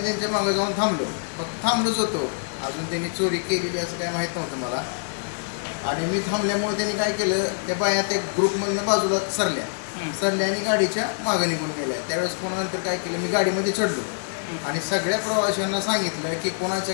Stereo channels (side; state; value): right; silent; digital silence